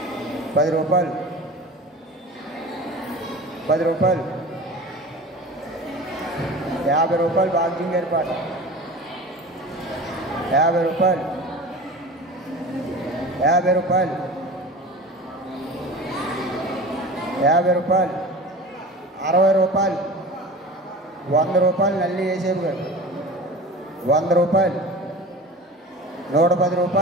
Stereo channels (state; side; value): normal; both; correlation 0.36